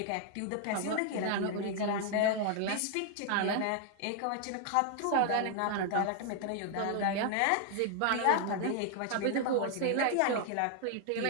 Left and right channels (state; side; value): different; both; correlation 0.00